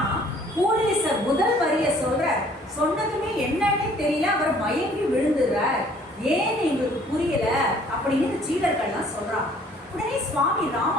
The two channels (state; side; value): normal; both; correlation 0.57